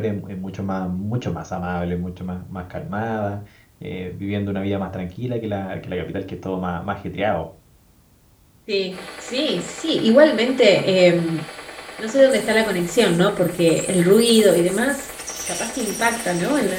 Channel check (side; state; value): both; identical; correlation 1.00